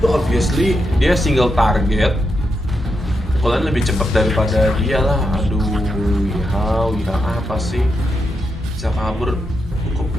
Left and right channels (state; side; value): normal; both; correlation 0.84